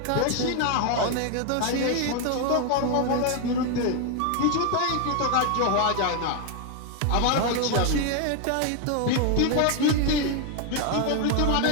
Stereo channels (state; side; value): different; both; correlation 0.01